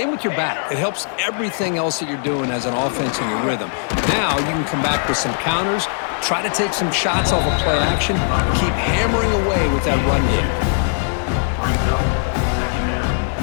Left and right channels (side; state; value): right; silent; digital silence